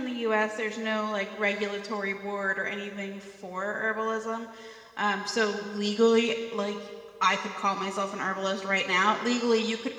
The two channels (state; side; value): identical; both; correlation 1.00